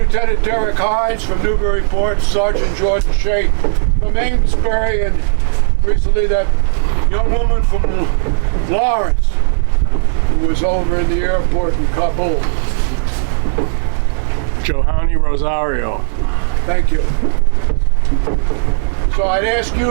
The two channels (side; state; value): left; silent; 64 dB below the other